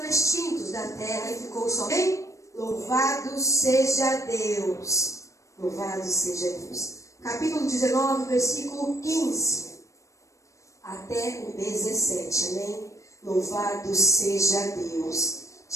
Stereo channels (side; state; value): right; late; 0.15 ms